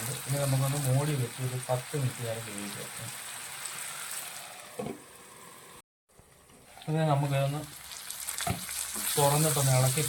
ഇനി നമുക്കൊന്ന് മൂടി വെച്ച് ഒരു 10 മിനിറ്റ് നേരം വേവിക്കാം. അത് നമുക്കതൊന്ന് തുറന്നിട്ടൊന്ന് ഇളക്കി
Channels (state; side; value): identical; both; correlation 1.00